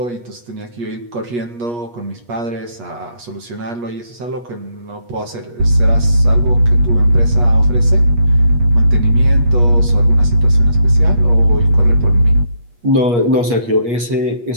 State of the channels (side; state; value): left; late; 8.4 ms